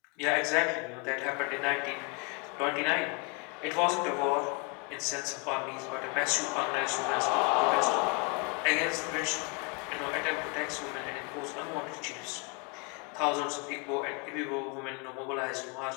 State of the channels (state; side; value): quieter; right; 33.4 dB